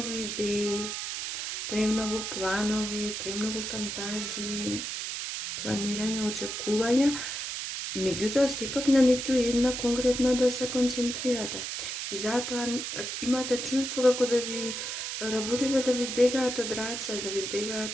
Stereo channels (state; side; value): noise; right; hiss, 4 dB below the sound